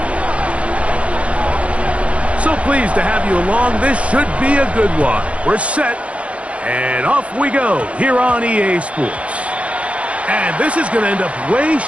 So pleased to have you along. This should be a good one. We're set, and off we go here on EA Sports. And this is going to end up way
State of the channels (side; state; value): left; late; 0.063 ms